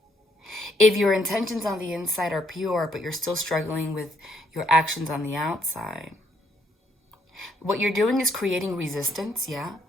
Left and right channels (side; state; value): both; normal; correlation 0.71